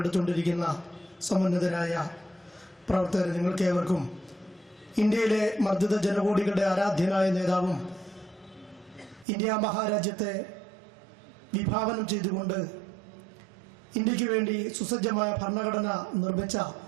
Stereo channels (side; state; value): left; drops out; at 9.2 s